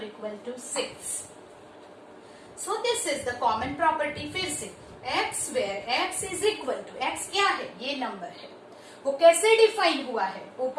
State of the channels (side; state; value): both; identical; correlation 1.00